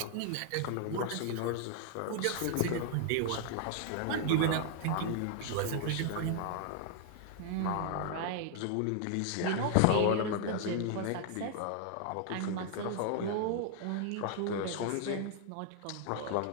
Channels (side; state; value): both; different; correlation 0.00